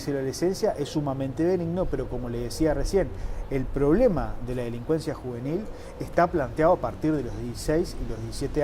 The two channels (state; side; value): identical; both; correlation 1.00